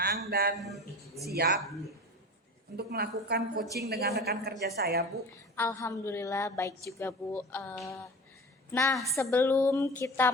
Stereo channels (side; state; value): both; normal; correlation 0.34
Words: dan siap untuk melakukan coaching dengan rekan kerja saya Bu. Alhamdulillah baik juga Bu. Nah, sebelum kita